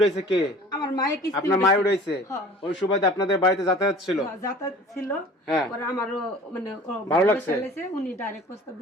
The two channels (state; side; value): normal; both; correlation 0.45